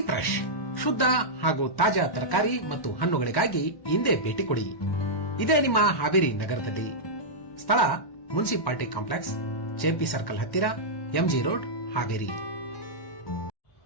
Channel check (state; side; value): late; right; 1.1 ms